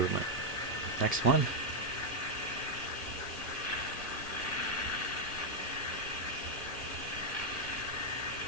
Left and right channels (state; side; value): late; right; 1.2 ms